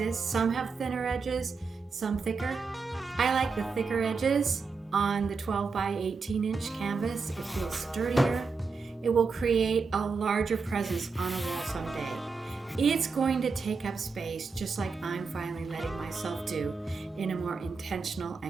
Some have thinner edges, some thicker. I like the thicker edges on the 12 by 18 inch canvas. It feels sturdier. It will create a larger presence on a wall someday. It's going to take up space just like I'm finally letting myself do in a more intentional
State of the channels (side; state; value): left; quieter; 4.7 dB